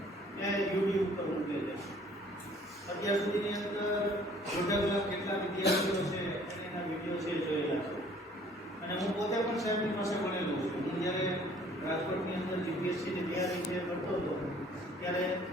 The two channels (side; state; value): both; normal; correlation 0.56